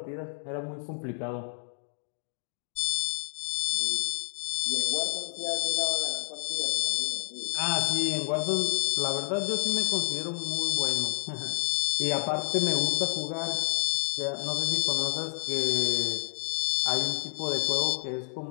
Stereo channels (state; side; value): silent; right; digital silence